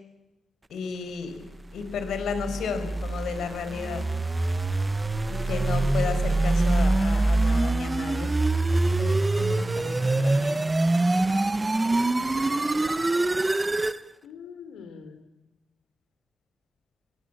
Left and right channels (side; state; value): both; normal; correlation 0.95